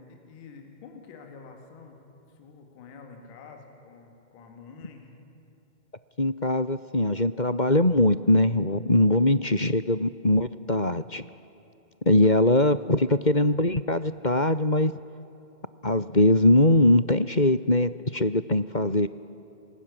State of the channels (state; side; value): late; right; 2.1 ms